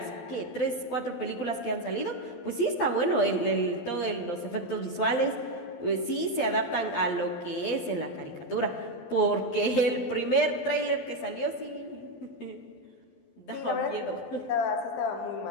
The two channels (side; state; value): right; late; 12 ms